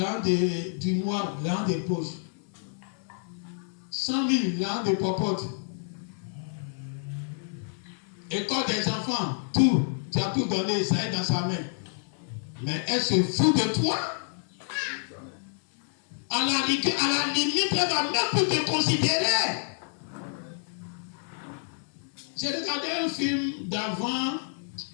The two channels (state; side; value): silent; right; digital silence